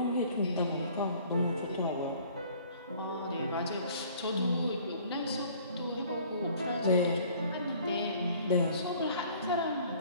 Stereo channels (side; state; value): both; inverted; correlation -0.54